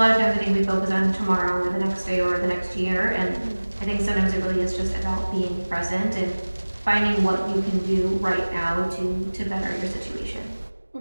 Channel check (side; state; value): both; inverted; correlation -1.00